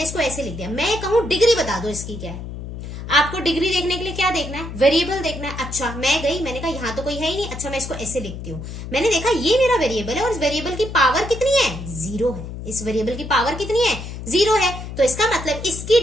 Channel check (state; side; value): noise; left; hum, 9 dB below the sound